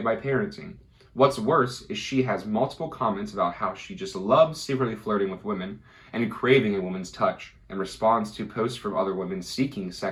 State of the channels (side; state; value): both; identical; correlation 1.00